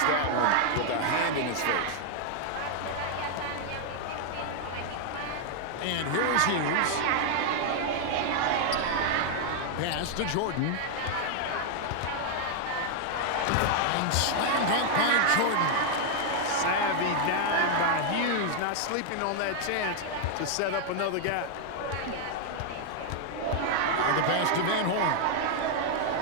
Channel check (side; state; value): both; different; correlation 0.00